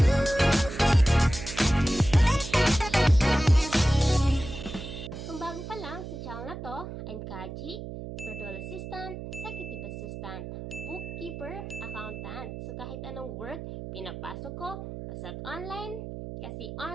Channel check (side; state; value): right; noise; hum, 9 dB below the sound